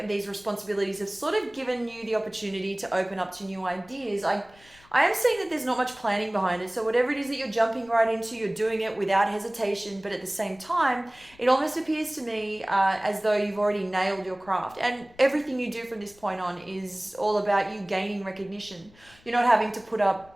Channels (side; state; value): left; noise; rumble, 27 dB below the sound